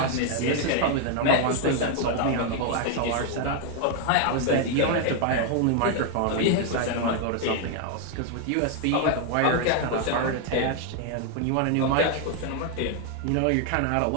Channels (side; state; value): both; different; correlation 0.00